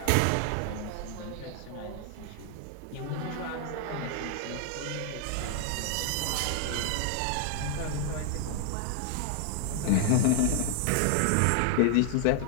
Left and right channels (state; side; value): different; both; correlation 0.00